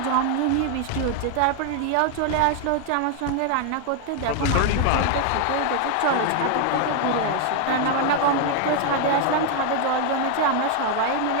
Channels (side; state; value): both; different; correlation 0.00